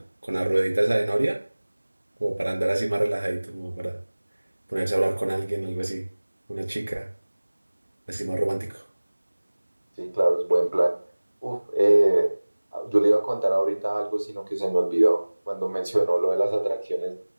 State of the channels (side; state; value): both; inverted; correlation -1.00